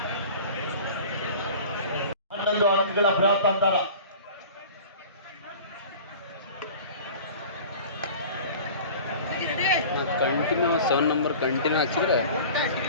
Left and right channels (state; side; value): inverted; both; correlation -0.41